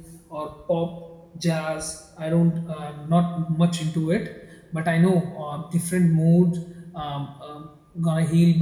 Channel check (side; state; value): both; identical; correlation 1.00